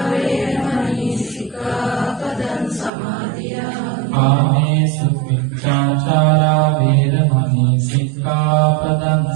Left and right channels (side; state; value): left; drops out; at 2.9 s